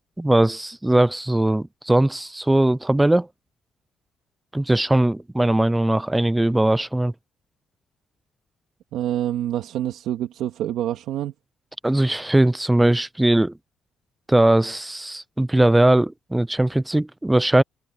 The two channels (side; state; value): both; normal; correlation 0.98